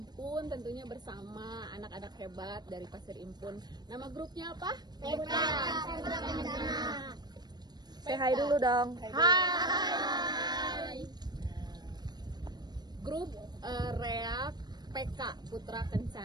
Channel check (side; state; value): left; late; 0.20 ms